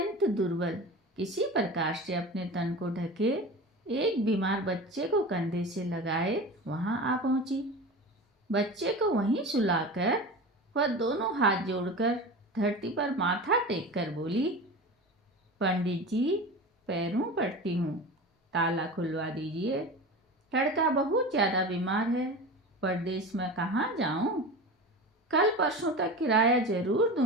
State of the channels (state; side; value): normal; both; correlation 0.31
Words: दुर्बल, किसी प्रकार से अपने तन को ढके एक बीमार बच्चे को कंधे से लगाए वहां आ पहुंची। बच्चे को वहीं सुलाकर वह दोनों हाथ जोड़कर धरती पर माथा टेक कर बोली, पंडित जी, पैरों पड़ती हूँ, ताला खुलवा दीजिए। लड़का बहुत ज़्यादा बीमार है, परदेश में कहाँ जाऊँ? कल परसों तक किराया जरूर